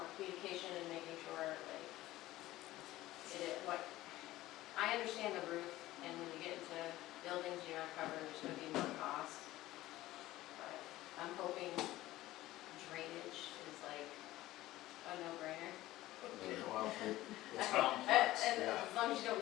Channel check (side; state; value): right; quieter; 16.3 dB